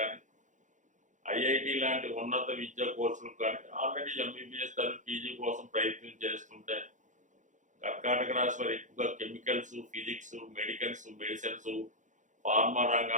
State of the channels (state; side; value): late; left; 0.36 ms